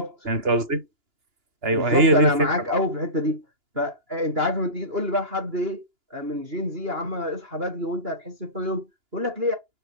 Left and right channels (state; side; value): late; left; 2.9 ms